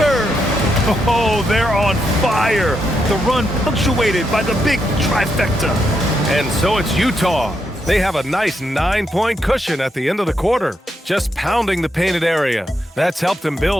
Oh, they're on fire. The run punctuated by the big trifecta. And so it's Utah They have a nice 9-point cushion at the end of the quarter, just pounding the painted area. That's helped them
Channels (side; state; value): both; normal; correlation 0.81